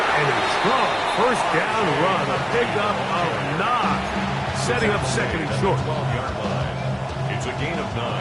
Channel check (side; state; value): both; identical; correlation 1.00